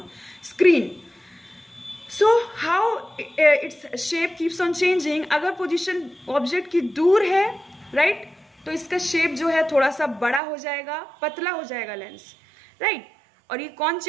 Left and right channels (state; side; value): drops out; left; at 10.4 s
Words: screen. So how its shape keeps on changing? अगर position object की दूर है, right, तो इसका शेप जो है थोड़ा सा बड़ा हो जाएगा, पतला हो जाएगा लेंस, राइट। और ये कौन